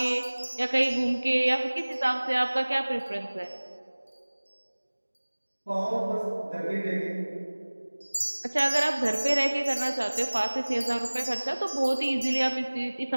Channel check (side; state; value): both; inverted; correlation -1.00